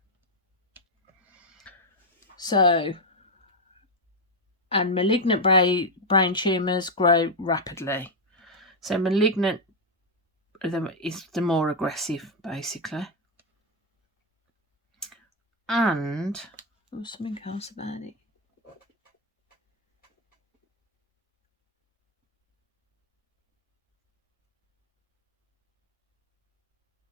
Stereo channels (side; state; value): both; normal; correlation 0.01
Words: So, and malignant brain tumours grow rapidly. So malignant is the more aggressive, basically. And there was something else about it.